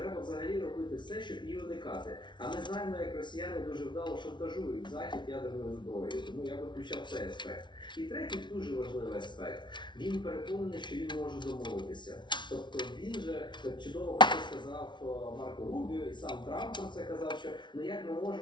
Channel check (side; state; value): right; late; 0.23 ms